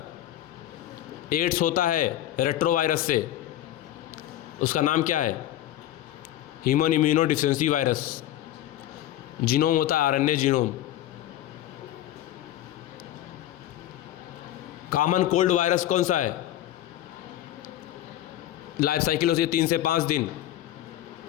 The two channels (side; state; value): right; quieter; 13.1 dB